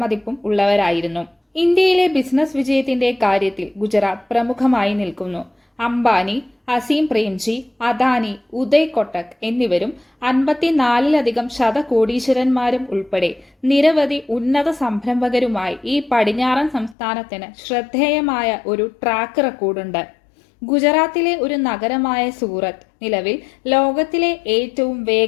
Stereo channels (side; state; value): right; drops out; at 16.9 s